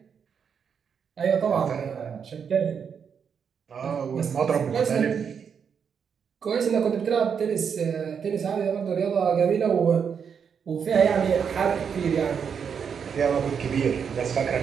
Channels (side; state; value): left; quieter; 6.9 dB